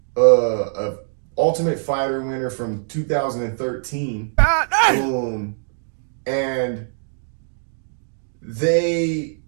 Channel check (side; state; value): left; silent; digital silence